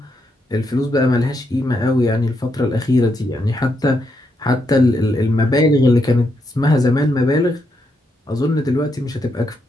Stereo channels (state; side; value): normal; both; correlation 0.80